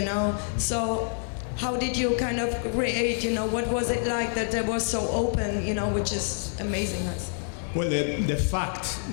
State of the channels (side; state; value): right; silent; digital silence